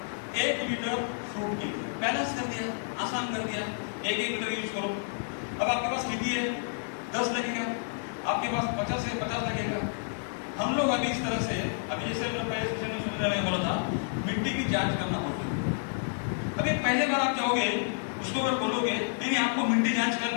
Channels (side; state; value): right; silent; digital silence